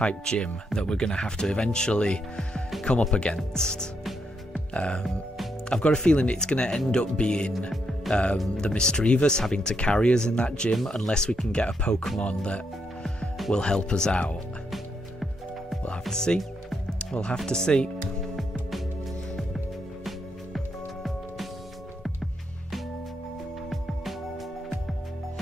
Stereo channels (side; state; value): both; normal; correlation 0.79